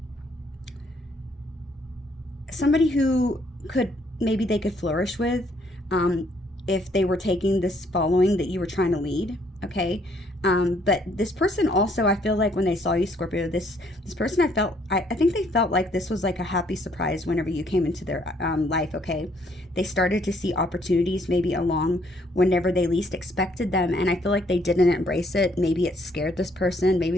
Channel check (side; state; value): both; normal; correlation 0.67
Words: somebody who maybe they could flourish with if they were taking this following that you were trying to lead, okay? But this person also, I feel like when they saw you, Scorpio, this person, I think they felt like this was like a happy surprise whenever you came into their life, okay? They started to see opportunities maybe along whenever they least expected them, and I feel like they didn't embrace it. Maybe it scared this person.